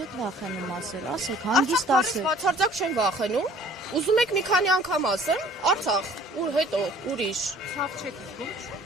եք վախենում ասել, ասեք, հանգիստ ասեք։ Բացարձակ չեմ վախենում, ուզում եք մի քանի անգամ ասեմ, Արցախ, ու հետո ուրիշ։ Ցավ չեք զգում։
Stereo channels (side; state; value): both; normal; correlation 0.53